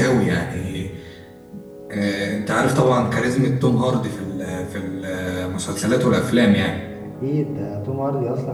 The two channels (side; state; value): both; identical; correlation 1.00